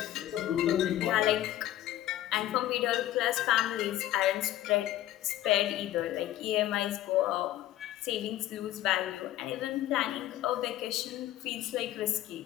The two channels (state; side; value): quieter; right; 13.9 dB